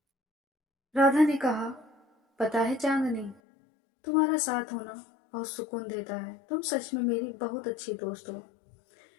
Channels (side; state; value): right; drops out; at 3.4 s